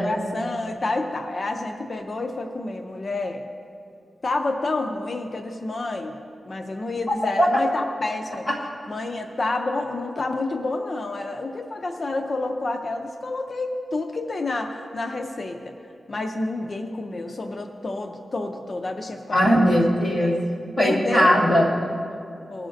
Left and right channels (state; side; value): normal; both; correlation 0.92